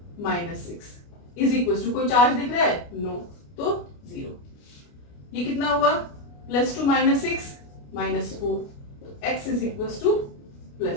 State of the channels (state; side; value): late; right; 29 ms